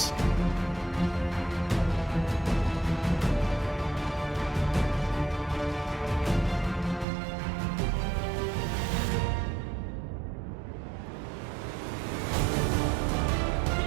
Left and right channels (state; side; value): drops out; left; at 7.1 s